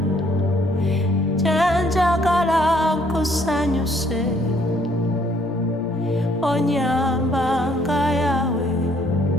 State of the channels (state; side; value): normal; both; correlation 0.65